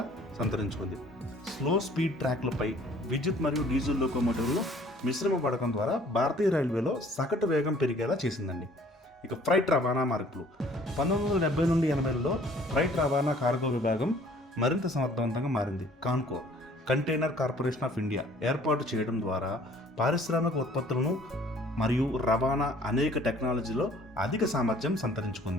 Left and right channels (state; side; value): normal; both; correlation 0.55